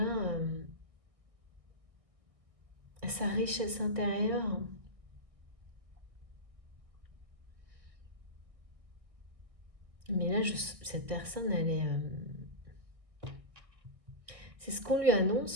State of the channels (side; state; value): left; late; 1.6 ms